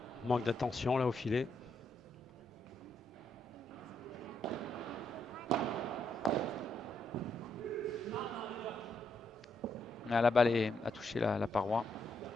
Manque d'attention là au filet. La balle a touché la paroi.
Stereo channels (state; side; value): normal; both; correlation 0.78